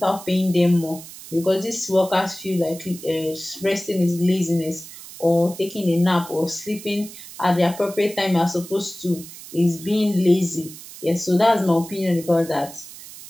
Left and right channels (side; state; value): right; noise; hiss, 15 dB below the sound